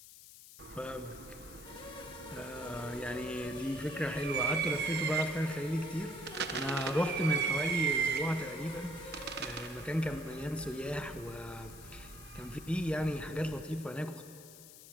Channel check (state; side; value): noise; left; hiss, 17 dB below the sound